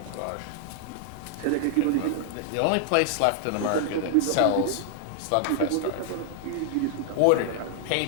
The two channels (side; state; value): both; different; correlation 0.00